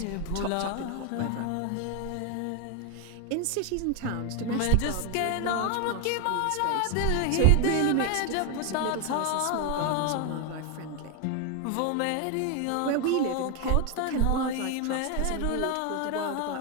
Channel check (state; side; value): different; both; correlation 0.01